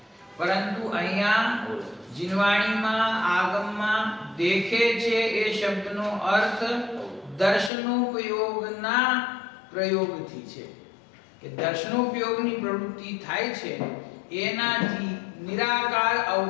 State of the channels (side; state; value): right; drops out; at 7.7 s